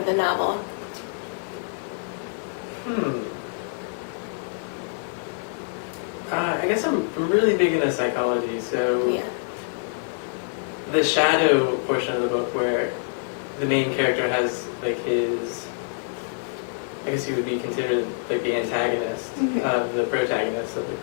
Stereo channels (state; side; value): silent; right; 61 dB below the other